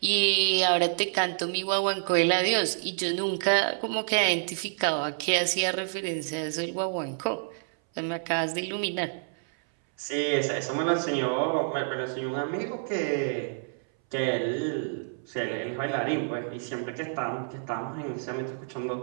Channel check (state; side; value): silent; left; 59 dB below the other